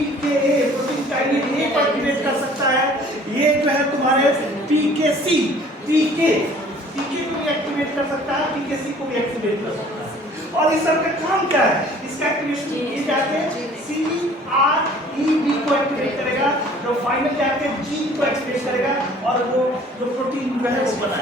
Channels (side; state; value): both; normal; correlation 0.52